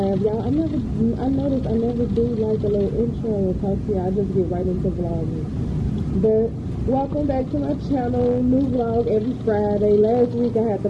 Y'all, I noticed I never do like a little intro and talk to you. I just get right into vlogging. But welcome back to my channel. New vlog every Friday. Last week I had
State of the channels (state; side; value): identical; both; correlation 1.00